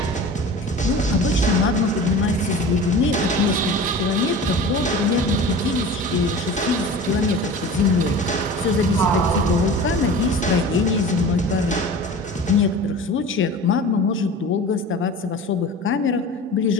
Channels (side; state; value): both; normal; correlation 0.36